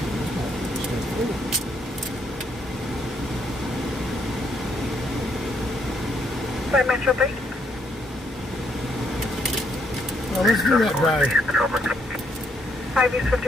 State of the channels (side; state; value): both; normal; correlation 0.72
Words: 5 Metro 3. Well, let's do that drive. 5 East